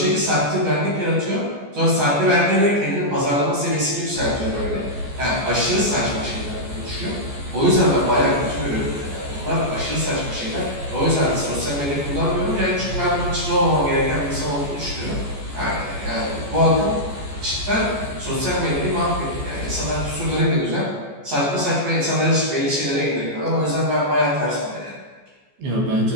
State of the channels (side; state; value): left; late; 14 ms